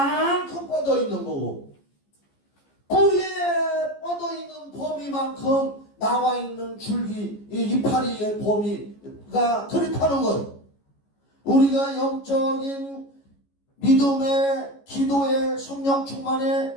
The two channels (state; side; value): late; right; 14 ms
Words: 뻗어 있는 거고 뿌리에 뻗어 있는 범위만큼 나와 있는 줄기 이파리의 범위가 그렇다는 거예요. 우리가 영적인 믿음의 기도의 성령